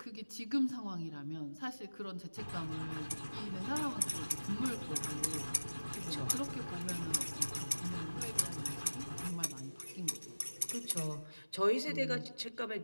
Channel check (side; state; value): both; inverted; correlation -1.00